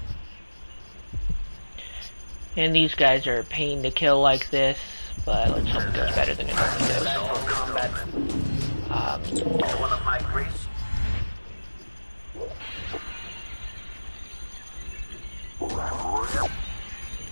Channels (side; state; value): both; inverted; correlation -1.00